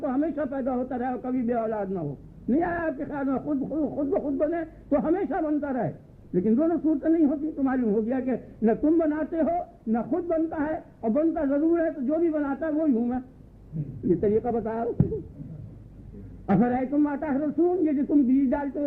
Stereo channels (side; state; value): both; identical; correlation 1.00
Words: تو ہمیشہ پیدا ہوتا رہے اور کبھی بے اولاد نہ ہو. نہیں آیا آپ کے خیال میں خود بخود بنے تو ہمیشہ بنتا رہے, لیکن دونوں صورتیں نہیں ہوتی. تو معلوم ہو گیا کہ نہ تم بناتے ہو نہ خود بنتا ہے, اور بنتا ضرور ہے تو جو بھی بناتا ہے وہی ہوں میں. یہ طریقہ بتایا. افرأیتم ما تحرثون, یہ جو تم بیج ڈالتے ہو